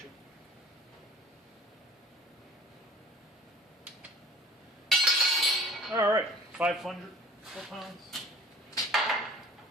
All right, 500 foot-pounds.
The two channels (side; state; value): both; normal; correlation 0.46